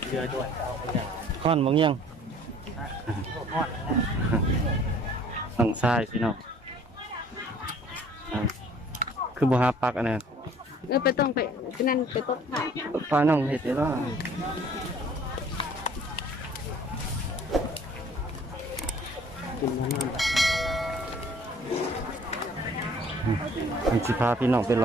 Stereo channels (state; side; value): normal; both; correlation 0.54